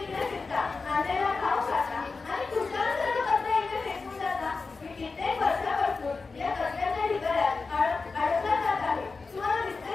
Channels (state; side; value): quieter; right; 4.2 dB